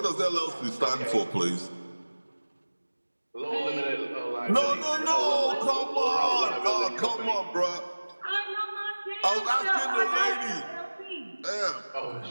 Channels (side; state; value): both; inverted; correlation -1.00